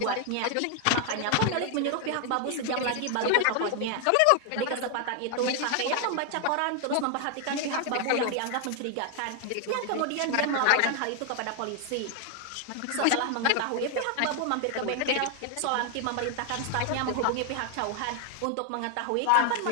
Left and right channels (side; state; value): both; different; correlation 0.00